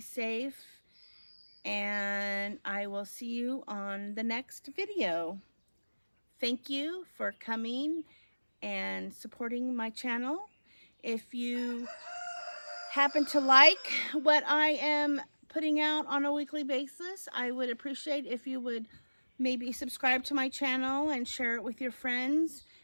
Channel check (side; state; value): both; inverted; correlation -1.00